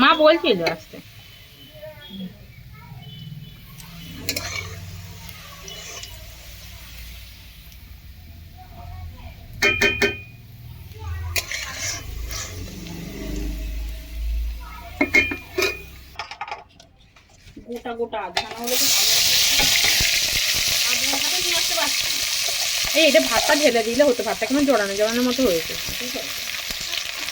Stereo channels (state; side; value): identical; both; correlation 1.00